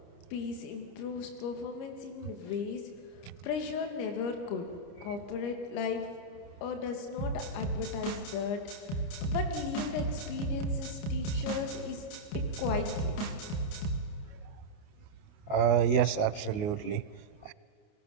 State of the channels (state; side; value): late; right; 29 ms